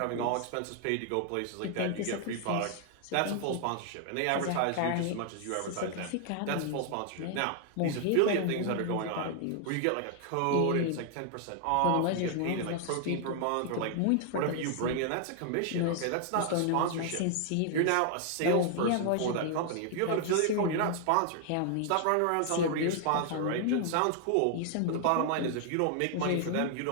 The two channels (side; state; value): both; different; correlation 0.00